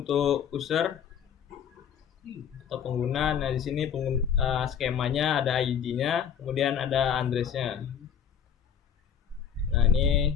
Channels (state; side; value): quieter; right; 8.1 dB